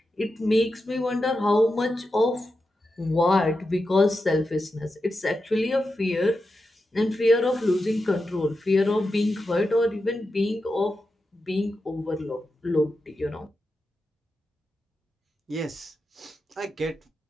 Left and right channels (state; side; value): normal; both; correlation 0.89